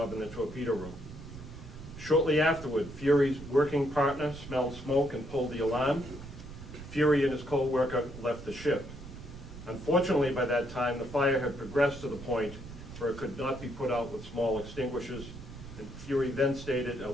in the torpedo room. Shortly afterward, Fury's working partner smelled smoke and pulled the alarm. Fury and his co-worker left the ship. Unfortunately, by that time, the fire had progressed to the point where it could not be put out with small extinguishers, and Fury then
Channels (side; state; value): right; noise; rumble, 13 dB below the sound